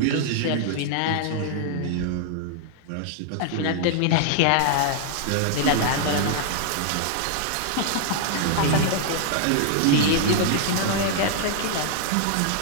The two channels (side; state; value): both; different; correlation -0.01